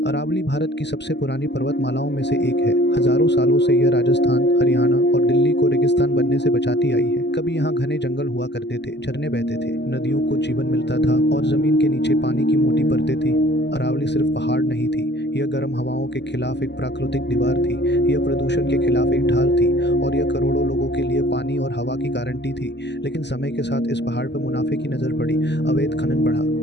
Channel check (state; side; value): late; right; 0.50 ms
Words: अरावली भारत की सबसे पुरानी पर्वतमालाओं में से एक है। हजारों सालों से यह राजस्थान, हरियाणा और दिल्ली को रेगिस्तान बनने से बचाती आई है। कभी यहाँ घने जंगल हुआ करते थे, झरने बहते थे, नदियों को जीवन मिलता था और जमीन के नीचे पानी की मोटी परतें थी। अरावली सिर्फ पहाड़ नहीं थी, यह गर्म हवाओं के खिलाफ एक प्राकृतिक दीवार थी। यह प्रदूषण के खिलाफ एक ढाल थी और यह करोड़ों लोगों के लिए पानी और हवा की गारंटी थी। लेकिन समय के साथ इस पहाड़ पर मुनाफे की नजर पड़ी। अवैध खनन बढ़ा,